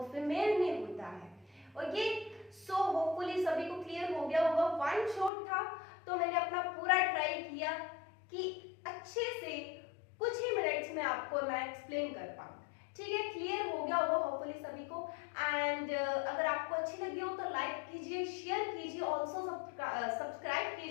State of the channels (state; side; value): drops out; right; at 5.3 s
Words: फीमेल में होता है। ओके, सो होपफुली सभी को क्लियर हो गया होगा। वन शॉट था, तो मैंने अपना पूरा ट्राई किया कि अच्छे से कुछ ही मिनट्स में आपको मैं एक्सप्लेन कर पाऊँ, ठीक है। क्लियर हो गया होगा होपफुली सभी को। एंड अगर आपको अच्छी लगी हो तो लाइक कीजिए, शेयर कीजिए, ऑल्सो सब्सक्राइब